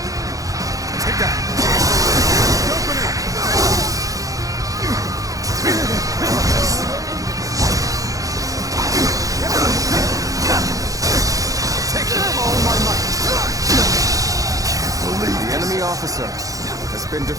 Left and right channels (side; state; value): left; late; 0.17 ms